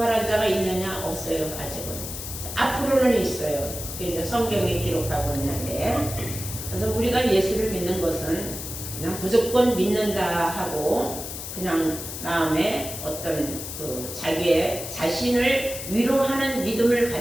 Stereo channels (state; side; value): noise; left; hiss, 8 dB below the sound